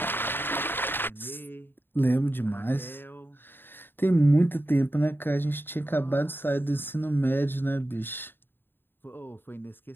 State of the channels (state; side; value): late; right; 0.099 ms